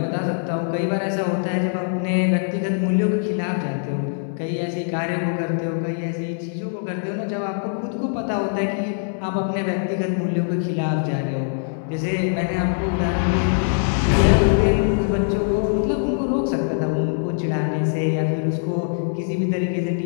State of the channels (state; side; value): silent; right; digital silence